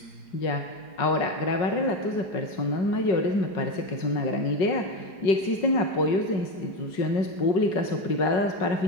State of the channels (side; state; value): right; late; 4.8 ms